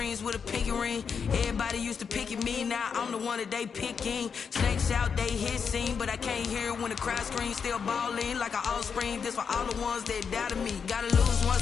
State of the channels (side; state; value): right; quieter; 6.3 dB